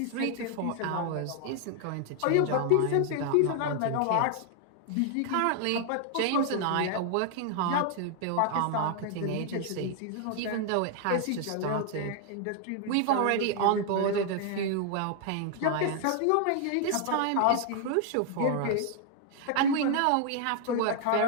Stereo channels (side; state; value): both; different; correlation 0.00